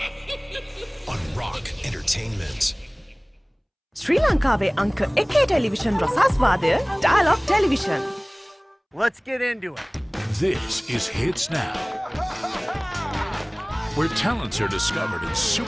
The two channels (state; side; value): identical; both; correlation 1.00